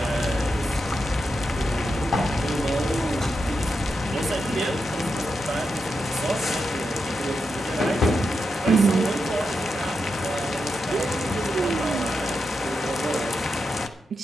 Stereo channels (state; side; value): normal; both; correlation 0.86